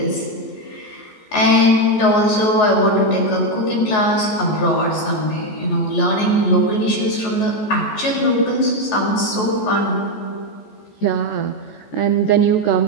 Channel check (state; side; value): late; right; 14 ms